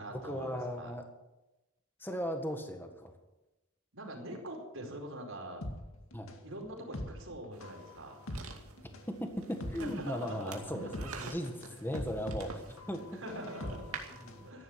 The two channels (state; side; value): normal; both; correlation 0.60